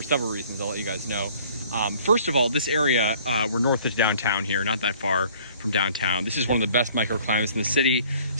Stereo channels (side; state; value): both; inverted; correlation -0.54